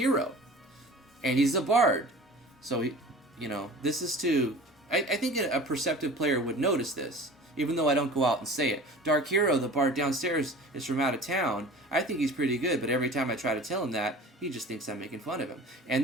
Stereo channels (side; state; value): both; normal; correlation 0.41